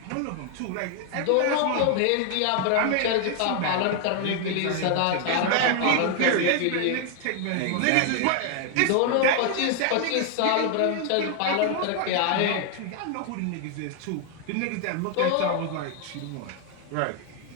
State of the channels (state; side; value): different; both; correlation 0.00